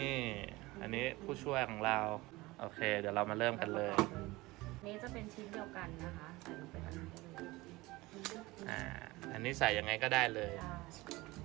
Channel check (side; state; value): left; quieter; 20.8 dB